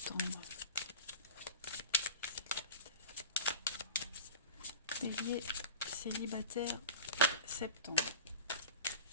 Bélier célibataire septembre.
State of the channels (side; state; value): both; inverted; correlation -0.33